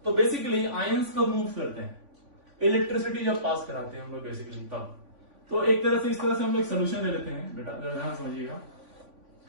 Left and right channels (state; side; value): late; left; 3.5 ms